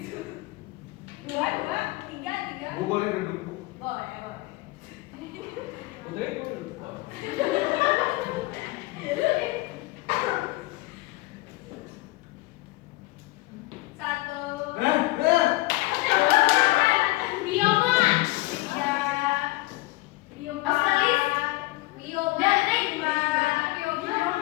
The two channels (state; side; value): quieter; right; 20.7 dB